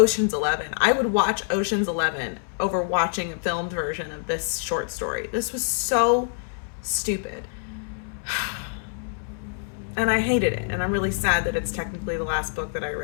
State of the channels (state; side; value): silent; right; 61 dB below the other